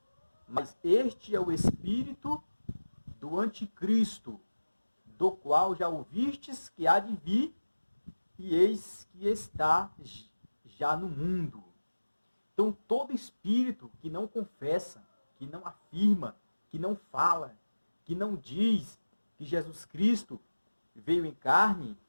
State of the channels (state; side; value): inverted; both; correlation -1.00